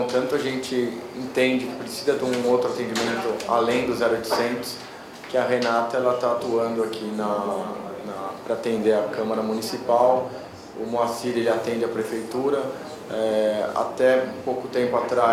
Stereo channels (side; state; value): both; identical; correlation 1.00